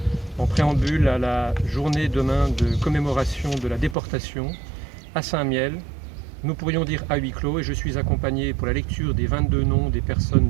en préambule à la journée demain de commémoration de la déportation à Saint-Mihiel. Nous pourrions dire à huis clos, et je suis accompagné pour la lecture des 22 noms des personnes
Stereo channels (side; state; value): left; drops out; at 4.0 s